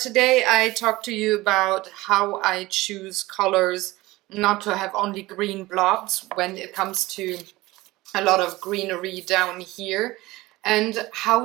I talk to you about how I choose colors not to have only green blobs when it comes to a lot of greenery down here, and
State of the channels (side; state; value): left; quieter; 19.5 dB